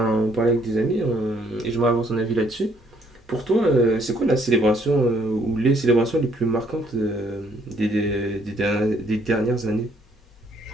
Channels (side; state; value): both; normal; correlation 0.66